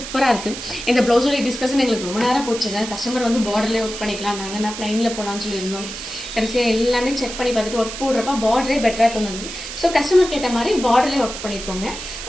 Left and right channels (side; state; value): right; noise; hiss, 9 dB below the sound